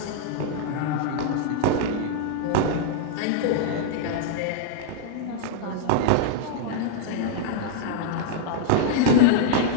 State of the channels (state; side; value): different; both; correlation -0.01